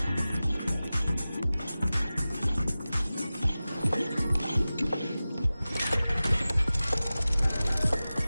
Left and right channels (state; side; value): inverted; both; correlation -0.96